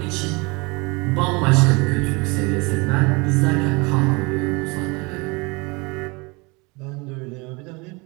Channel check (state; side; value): quieter; left; 27.4 dB